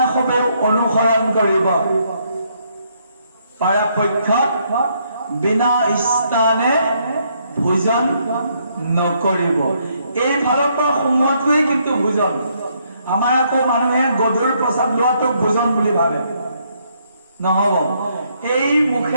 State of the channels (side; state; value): both; inverted; correlation -0.72